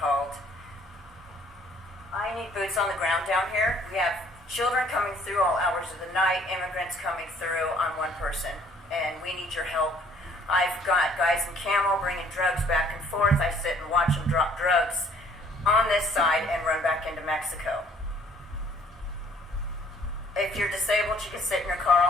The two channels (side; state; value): both; normal; correlation 0.59